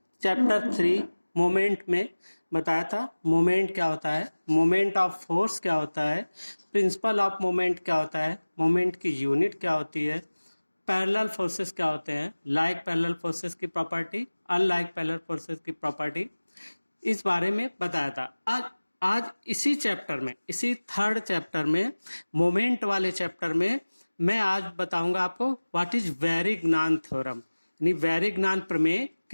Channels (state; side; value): inverted; both; correlation -1.00